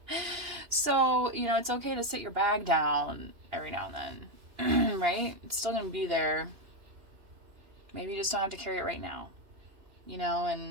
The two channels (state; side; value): late; left; 2.9 ms